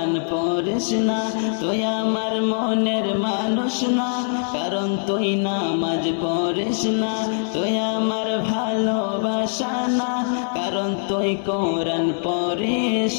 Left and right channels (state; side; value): silent; right; digital silence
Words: পড়িস না। তুই আমার মনের মানুষ না, কারণ তুই নামাজ পড়িস না। তুই আমার ভালোবাসা না, কারণ তুই কোরআন পড়িস